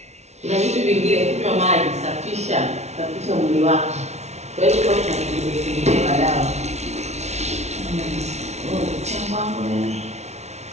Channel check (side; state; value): left; late; 0.32 ms